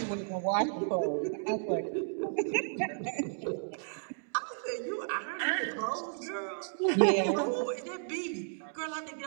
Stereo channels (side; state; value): left; silent; digital silence